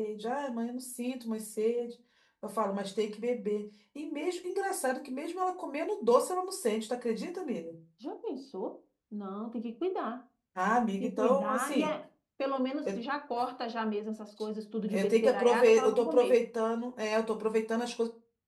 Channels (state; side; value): identical; both; correlation 1.00